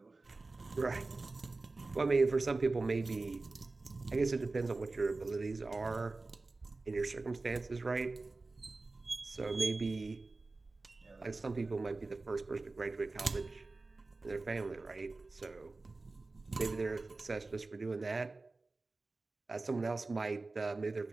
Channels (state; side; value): quieter; left; 3.4 dB